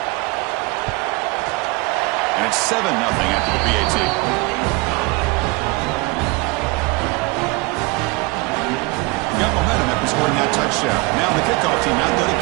And it's 7-0 after the PAT. Got momentum after scoring that touchdown. Now the kickoff team out there to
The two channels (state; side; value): quieter; left; 25.8 dB